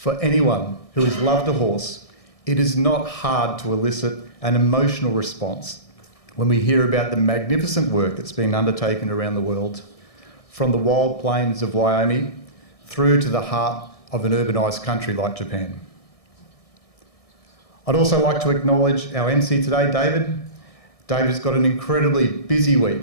anyone who has loved a horse, it is not hard to elicit an emotional response when we hear about the magnificent work that's been undertaken around the world, from the wild plains of Wyoming through to the heart of an urbanised country like Japan. I'd also like to acknowledge our MC today, David. David's got an incredibly busy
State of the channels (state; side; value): late; right; 1.6 ms